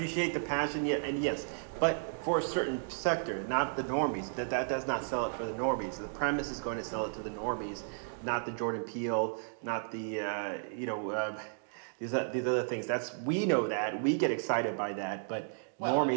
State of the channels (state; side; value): silent; left; digital silence